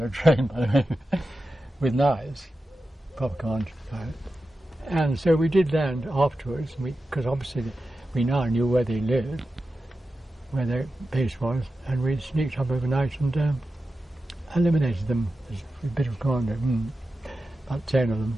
trained, by the way, with knives, proper commando. And so we did land afterwards, because obviously we now knew where they lived, where their base was, and we sneaked up overnight and eliminated them as a bit of commando. About 10 of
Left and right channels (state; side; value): normal; both; correlation 0.92